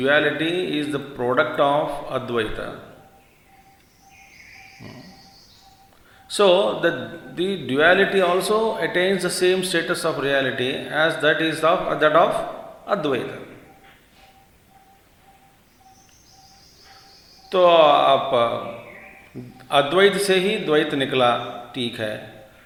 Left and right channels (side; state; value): both; identical; correlation 1.00